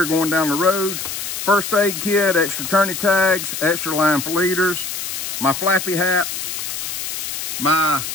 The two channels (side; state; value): left; noise; hiss, 5 dB below the sound